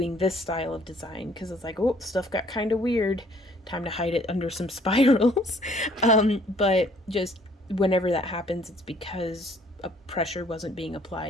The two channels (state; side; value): normal; both; correlation 0.60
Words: this style of design, because it's like, oh, stuff got kind of weird, time to hide it under some spirals. But just whenever that happens, it's because a pressure wasn't being